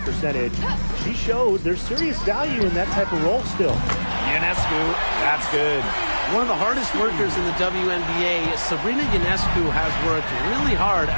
She shows there's serious value in that type of role still. Ionescu, that's good. One of the hardest workers in the WNBA, Sabrina Ionescu, has worked really hard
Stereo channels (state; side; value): inverted; both; correlation -1.00